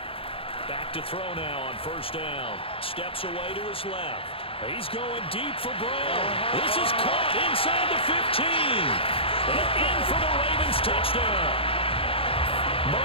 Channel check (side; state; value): right; late; 0.27 ms